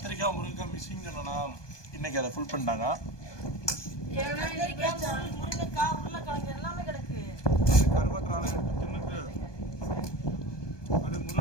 முருங்கைக்காய் மிஸ்ஸிங் சொன்னா இன்னைக்கு அதை ஃபுல் பண்ணிட்டாங்க. முருங்கைக்காய் உருளைக்கிழங்கு எல்லாமே கிடக்கு. கருவாட்டு ராளை எடுத்து தின்னுட்டு அது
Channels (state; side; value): late; right; 1.2 ms